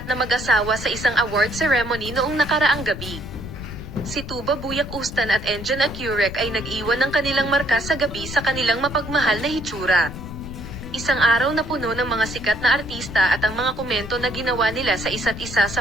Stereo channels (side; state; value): left; noise; rumble, 10 dB below the sound